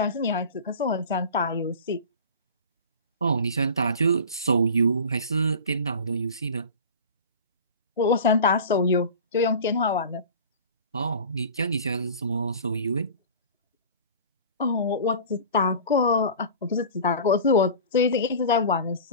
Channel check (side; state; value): both; inverted; correlation -0.36